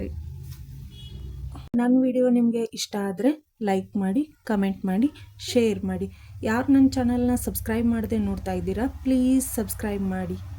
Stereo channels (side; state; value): both; identical; correlation 1.00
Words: ನನ್ನ ವಿಡಿಯೋ ನಿಮಗೆ ಇಷ್ಟ ಆದರೆ ಲೈಕ್ ಮಾಡಿ, ಕಮೆಂಟ್ ಮಾಡಿ, ಶೇರ್ ಮಾಡಿ. ಯಾರು ನನ್ನ ಚಾನಲ್ನ ಸಬ್ಸ್ಕ್ರೈಬ್ ಮಾಡದೆ ನೋಡ್ತಾ ಇದ್ದೀರಾ ಪ್ಲೀಸ್ ಸಬ್ಸ್ಕ್ರೈಬ್ ಮಾಡಿ.